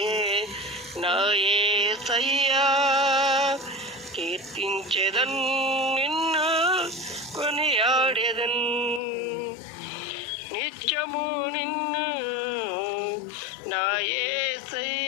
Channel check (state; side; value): drops out; right; at 9.0 s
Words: నా యేసయ్యా, కీర్తించెదన్ నిన్ను, కొనియాడెదన్. నిత్యము నిన్ను నా